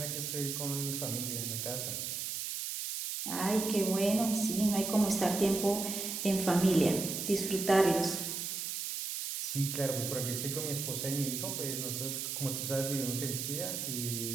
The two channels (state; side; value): noise; right; hiss, 3 dB below the sound